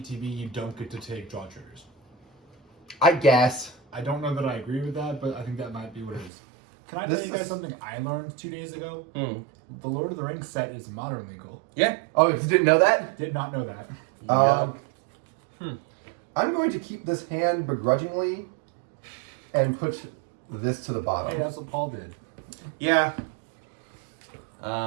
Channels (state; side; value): drops out; left; at 6.3 s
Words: you don't get to take draw triggers. I guess. I don't know that I agree with that, but I think that might be what it is. Can I This tell you guys is- something I learned 2 days ago? Hmm. The Lord of the Rings set is modern legal. Yeah. Oh, if you didn't know that? Did not know that. I'm going to keep this hand begrudgingly and put this to the Hey, bottom. that's what Paul did. Yeah.